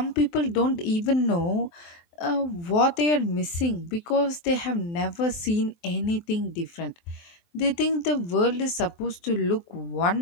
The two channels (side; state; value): right; late; 23 ms